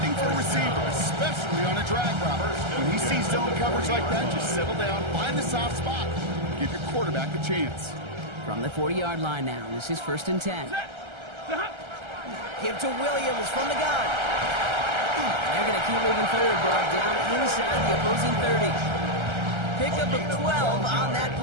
for a receiver, especially on a drag route. When he sees zone coverage like that, just settle down, find the soft spot, give your quarterback a chance. From the 40-yard line now, this is first and 10. Give to Williams from the gun. They're going to keep moving forward, Brock, down inside the opposing 30. Pickup of 12 on that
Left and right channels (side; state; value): left; late; 1.3 ms